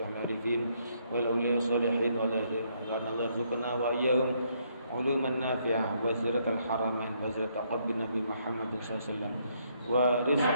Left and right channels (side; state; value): both; inverted; correlation -0.72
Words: arifin wal awliya salihin wa la yarzuqna wa iyyahum علوما نافعة وزيرة الحرمين وزيرة قلب النبي محمد صلى الله عليه وسلم